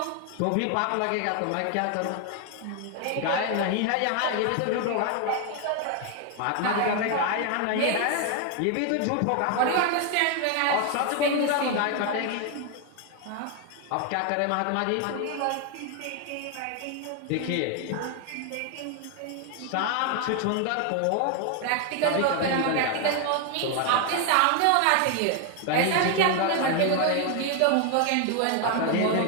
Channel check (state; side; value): different; both; correlation 0.01